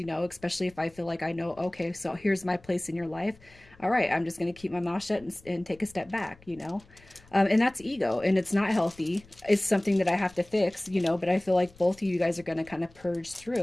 know, especially if I feel like I know, okay, so here's my place in your life. All right, I'm just going to keep my mouth shut and take a step back, you know. And that's ego, and it's not healthy. It's something that I have to fix, you know, but I feel like both of you guys are going to kind of purge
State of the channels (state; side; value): noise; left; rumble, 25 dB below the sound